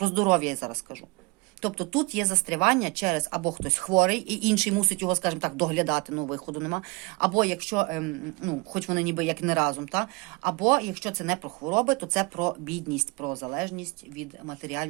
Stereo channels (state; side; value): quieter; left; 27.6 dB